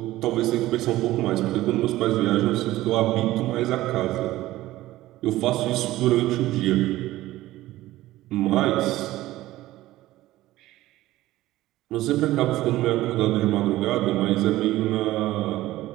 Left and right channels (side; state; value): left; quieter; 16.2 dB